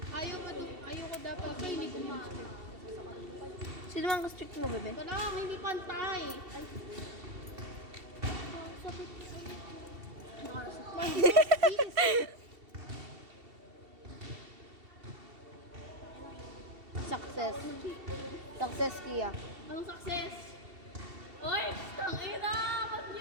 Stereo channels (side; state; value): left; late; 2.7 ms